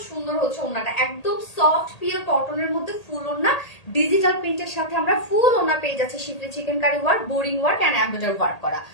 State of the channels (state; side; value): late; right; 1.8 ms